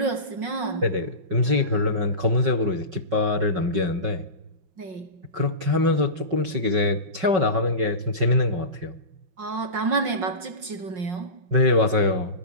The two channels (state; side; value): late; left; 5.3 ms